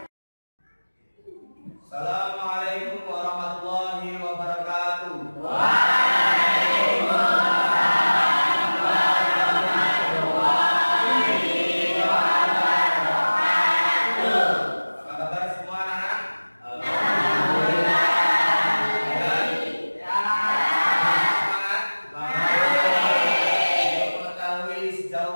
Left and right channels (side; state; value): both; inverted; correlation -1.00